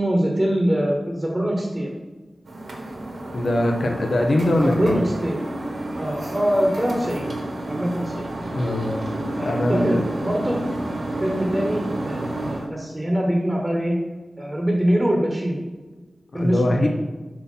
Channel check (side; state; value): both; normal; correlation 0.96